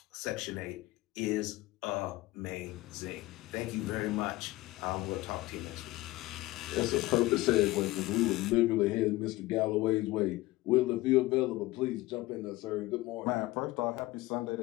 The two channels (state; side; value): quieter; right; 19.1 dB